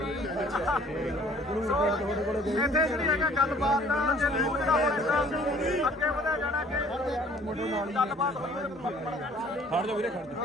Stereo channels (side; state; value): both; normal; correlation 0.55